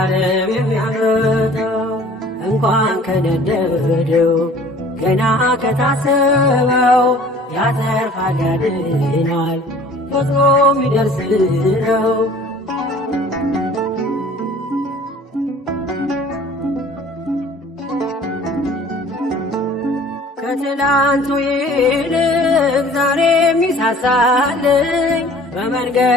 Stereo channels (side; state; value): both; normal; correlation 0.49